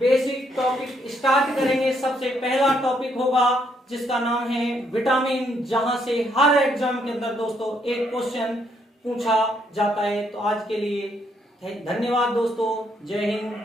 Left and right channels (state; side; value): normal; both; correlation 0.73